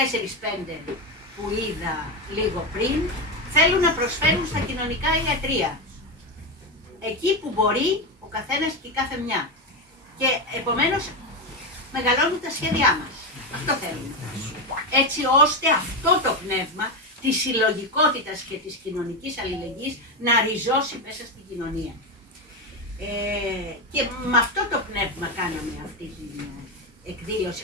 που είδα λίγο πριν, θέλουν να προσφέρουν στα κοινωνικά ιατρεία. Εκεί που μπορεί ο καθένας και η κάθε μια. Και επομένως μεγαλώνουν τα σχέδιά μας. Αυτό θέλουμε. Έτσι ώστε αυτό το πνεύμα της συλλογικότητας και της κοινωνικής αλληλεγγύης να ριζώσει μέσα στην κοινωνία. Και με αυτό το πνεύμα κάναμε αυτή την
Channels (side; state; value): both; normal; correlation 0.12